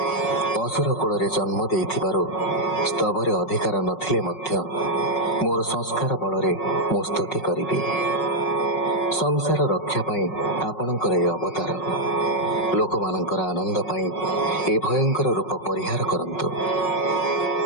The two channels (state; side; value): late; right; 5.4 ms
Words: ଅସୁର କୂଳରେ ଜନ୍ମ ଦେଇଥିବାରୁ ସ୍ତବରେ ଅଧିକାର ନଥିଲେ ମଧ୍ୟ ମୋର ସଂସ୍କାର ବଳରେ ମୁଁ ସ୍ତୁତି କରିବି। ସଂସାର ରକ୍ଷା ପାଇଁ ଆପଣଙ୍କର ଏ ଅବତାର, ଲୋକମାନଙ୍କର ଆନନ୍ଦ ପାଇଁ ଏ ଭୟଙ୍କର ରୂପ ପରିହାର କରନ୍ତୁ।